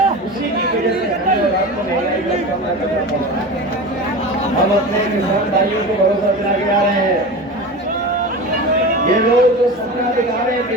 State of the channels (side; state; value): both; normal; correlation 0.29